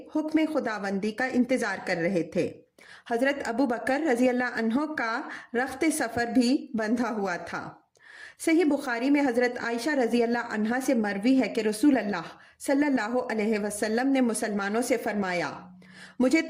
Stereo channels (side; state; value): both; identical; correlation 1.00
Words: حکم خداوندی کا انتظار کر رہے تھے۔ حضرت ابو بکر رضی اللہ عنہ کا رخت سفر بھی بندھا ہوا تھا۔ صحیح بخاری میں حضرت عائشہ رضی اللہ عنہا سے مروی ہے کہ رسول اللہ صلی اللہ علیہ وسلم نے مسلمانوں سے فرمایا، مجھے